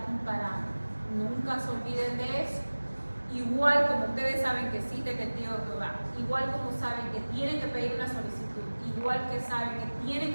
un parámetro. Nunca se olviden de eso. Igual como ustedes saben que existe el testigo de Jehová, igual como saben que tienen que pedir una solicitud, igual que saben que tienen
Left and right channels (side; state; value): both; inverted; correlation -1.00